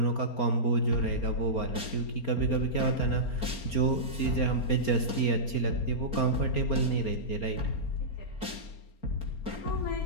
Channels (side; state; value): right; late; 4.3 ms